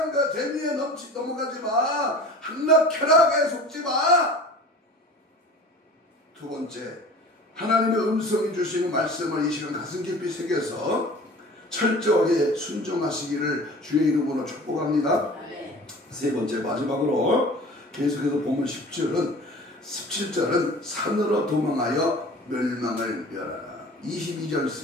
재미에 넘어가지 마. 함락 쾌락에 속지 마. 두 번째, 하나님의 음성이 주시는 말씀을 이 시간 가슴 깊이 새겨서 철저하게 순종하시기를 주의 이름으로 축복합니다. 세 번째, 마지막으로 계속해서 보면 17절은 산으로 도망하여 멸망을 멸하라. 22절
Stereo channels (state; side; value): normal; both; correlation 0.41